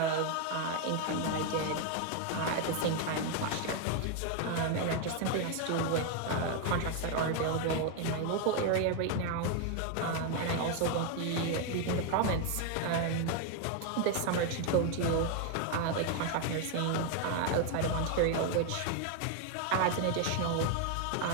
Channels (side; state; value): both; different; correlation 0.01